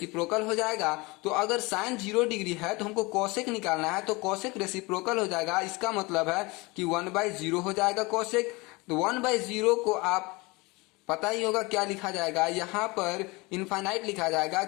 हो जाएगा। तो अगर साइन 0 डिग्री है तो हमको कोसेक निकालना है, तो कोसेक रेसिप्रोकल हो जाएगा। इसका मतलब है कि 1/0 हो जाएगा कोसेक। तो 1/0 को आप पता ही होगा क्या लिखा जाएगा, यहाँ पर इनफाइनाइट लिखा जाएगा,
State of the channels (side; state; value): right; quieter; 24.7 dB